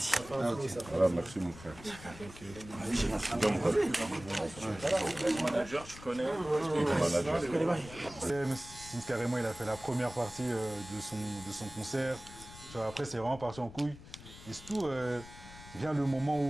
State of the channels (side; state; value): left; noise; rumble, 16 dB below the sound